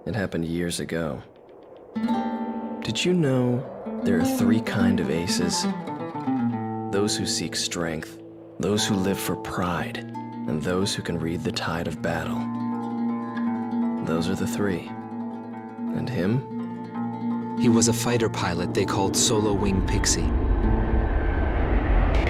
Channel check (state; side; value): identical; both; correlation 1.00